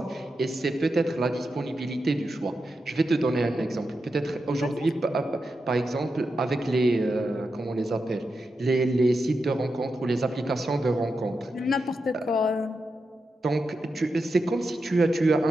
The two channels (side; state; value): both; normal; correlation 0.88